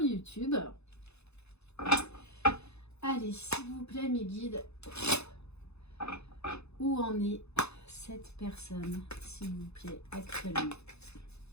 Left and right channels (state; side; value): late; right; 0.80 ms